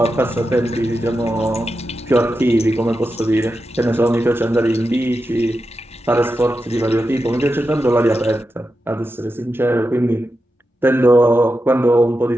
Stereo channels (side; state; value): both; normal; correlation 0.89